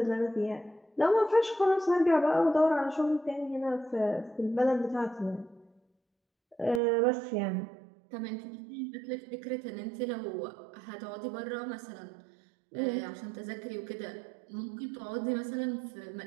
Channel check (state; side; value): drops out; left; at 6.8 s